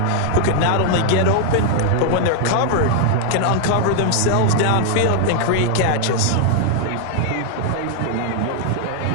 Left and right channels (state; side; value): different; both; correlation 0.00